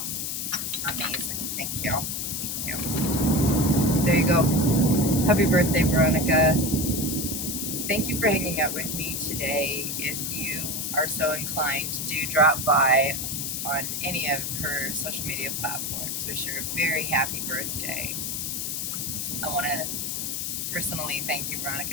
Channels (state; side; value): noise; left; hiss, 2 dB below the sound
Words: Amazing. Thank you. Thank you. There you go. Happy birthday, Veronica. Thank you for hanging out with me today. If you are so inclined, do drop by on any of her social media platforms. Wish her a very happy birthday. I want to personally thank you,